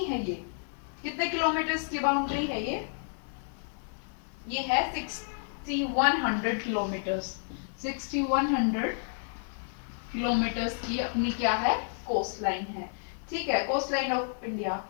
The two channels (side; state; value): right; silent; 57 dB below the other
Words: ये कितने किलोमीटर्स की बाउंड्री है, ये है 6100 किलोमीटर्स, 6100 किलोमीटर्स की अपनी क्या है कोस्ट लाइन है, ठीक है, कोस्ट लाइन ऑफ इंडिया।